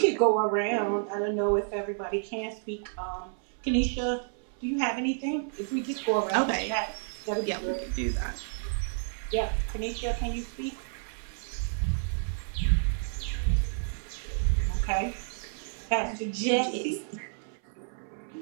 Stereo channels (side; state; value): left; silent; 58 dB below the other